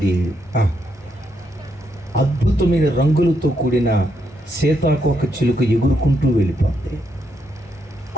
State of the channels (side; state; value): both; normal; correlation 0.78